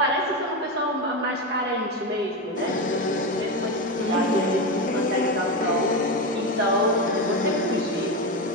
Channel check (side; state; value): both; normal; correlation 0.15